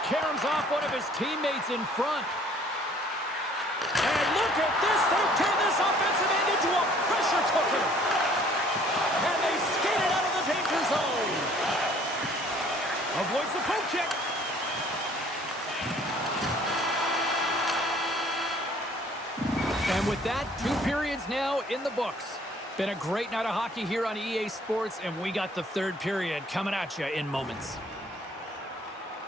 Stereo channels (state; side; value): normal; both; correlation 0.57